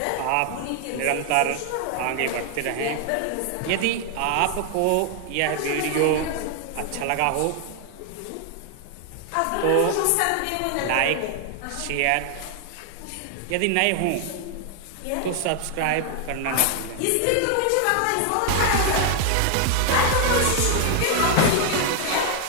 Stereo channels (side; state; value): both; different; correlation 0.00